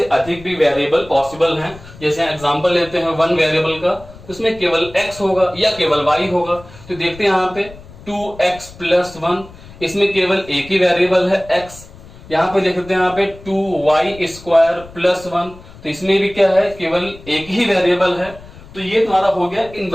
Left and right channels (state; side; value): noise; left; rumble, 19 dB below the sound